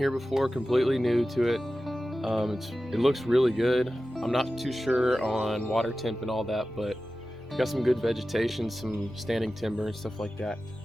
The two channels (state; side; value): normal; both; correlation 0.94